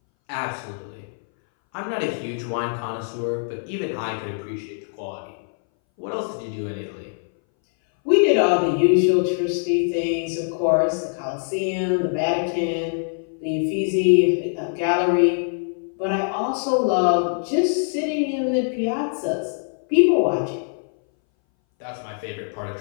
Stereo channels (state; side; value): silent; right; 61 dB below the other